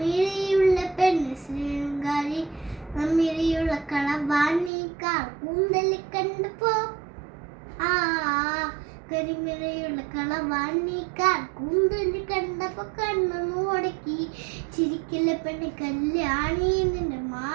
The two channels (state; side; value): drops out; left; at 4.7 s